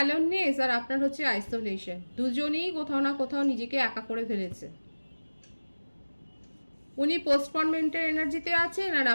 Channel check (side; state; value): both; inverted; correlation -1.00